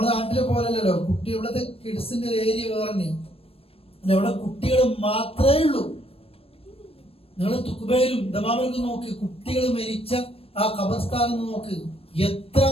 നാട്ടിലെ പോലല്ലോ, കുട്ടി ഇവിടുത്തെ കിഡ്സിന്റെ ഏരിയ വേറെ തന്നെയാണ്. ഇവിടെ കുട്ടികൾ മാത്രമേ ഉള്ളൂ. നിങ്ങൾ തുക്കുബയിലും ദമാമിലും നോക്ക്, കുട്ടികൾ മരിച്ച ആ ഖബർസ്ഥാനം നോക്ക്,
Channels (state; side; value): late; right; 0.28 ms